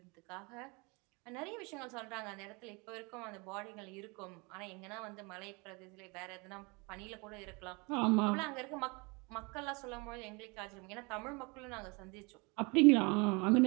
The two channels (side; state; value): left; quieter; 28.7 dB